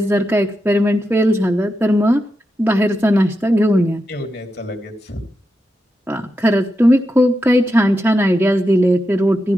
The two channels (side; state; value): both; normal; correlation 0.87